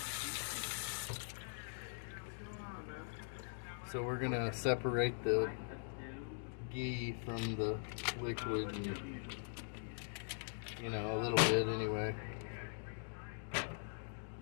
So we're gonna separate the ghee from the liquid, and, you know, a little bit anyway.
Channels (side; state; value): right; silent; digital silence